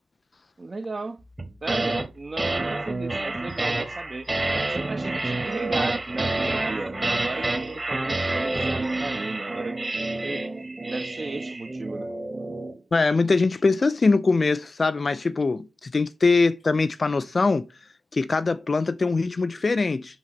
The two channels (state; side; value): normal; both; correlation 0.94